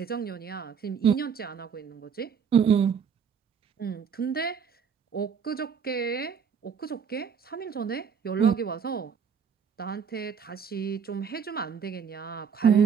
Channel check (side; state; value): left; quieter; 6.9 dB